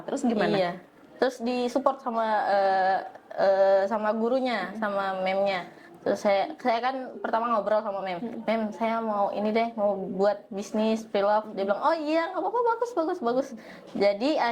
Terus gimana? Iya. Terus disupport sama gurunya, sama memnya. Terus saya kan pertama ngobrol sama mem, saya mau ini deh, mau buat bisnis pre-love. Dia bilang, oh iya nggak apa-apa, bagus. Jadi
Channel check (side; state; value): both; identical; correlation 1.00